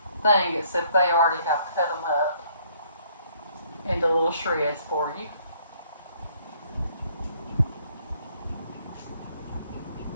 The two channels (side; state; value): both; inverted; correlation -0.64